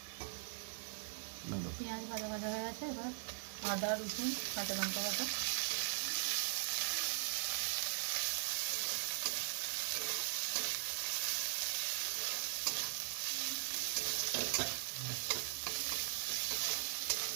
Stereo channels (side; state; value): left; silent; 51 dB below the other